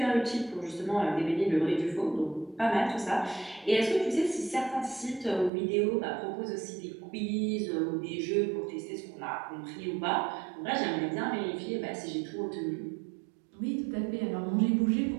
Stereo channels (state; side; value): drops out; left; at 5.5 s